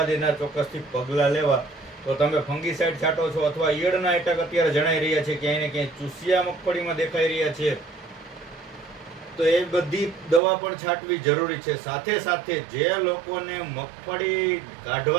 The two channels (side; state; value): left; drops out; at 10.4 s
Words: એના ચોક્કસથી પગલાં લેવા. તો તમે ફંગીસાઇડ છાંટો છો અથવા ઈયળના એટક અત્યારે જણાઈ રહ્યા છે, ક્યાંય ને ક્યાંય ચૂસિયા મગફળીમાં દેખાઈ રહ્યા છે, તો એ બધી દવા પણ છાંટવી જરૂરી છે. સાથે સાથે જે લોકોને મગફળી